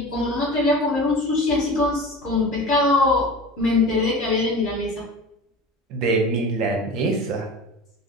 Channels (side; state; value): both; normal; correlation 0.34